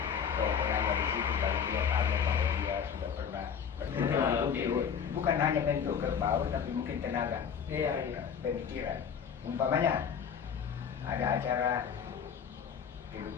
Tongkonannya di situ, baru dia tahu bahwa dia sudah pernah bukan hanya bentuk kerbau tapi mungkin tenaga, pemikiran. Umpamanya ada acara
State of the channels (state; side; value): quieter; right; 7.2 dB